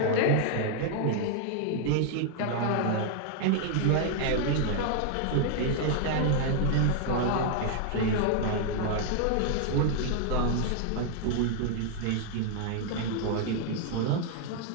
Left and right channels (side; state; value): both; different; correlation 0.00